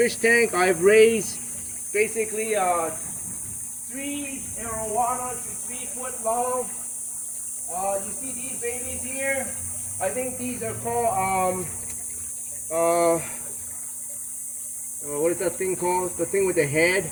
tank I've raised basically 3 arowanas to 3 foot long. You see these babies here? I think these are called what is that thing called? The thing with the head?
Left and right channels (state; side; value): identical; both; correlation 1.00